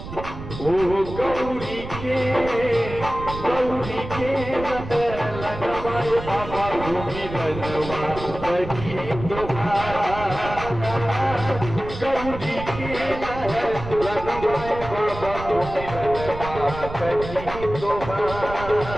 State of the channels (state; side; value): noise; right; rumble, 10 dB below the sound